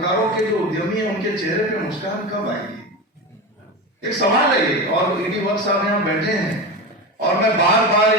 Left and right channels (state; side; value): normal; both; correlation 0.23